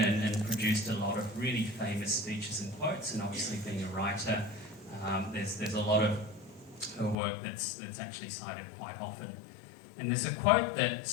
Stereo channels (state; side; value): drops out; right; at 7.2 s